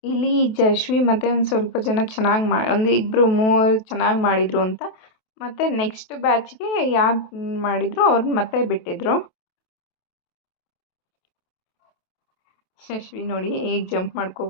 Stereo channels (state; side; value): late; right; 28 ms